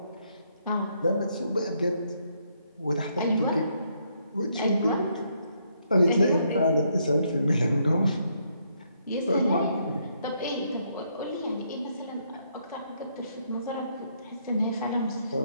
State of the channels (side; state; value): both; inverted; correlation -0.73